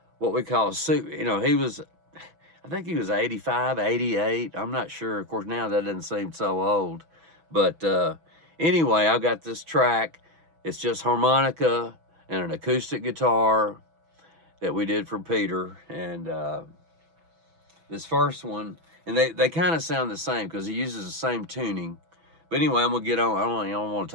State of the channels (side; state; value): left; late; 6.1 ms